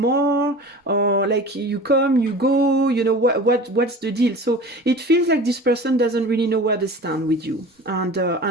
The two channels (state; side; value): normal; both; correlation 0.38